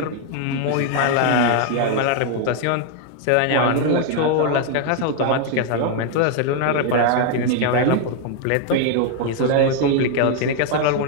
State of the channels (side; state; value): both; different; correlation 0.00